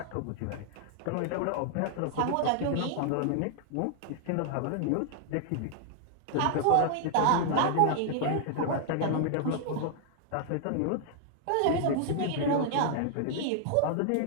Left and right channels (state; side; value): different; both; correlation -0.01